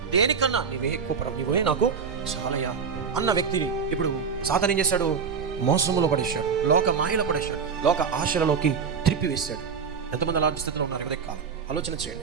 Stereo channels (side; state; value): left; quieter; 6.0 dB